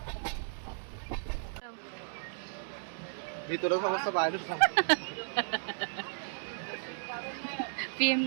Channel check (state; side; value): silent; left; 55 dB below the other